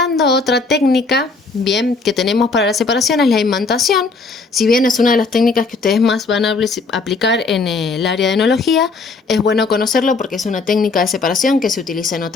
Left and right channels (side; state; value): right; quieter; 4.1 dB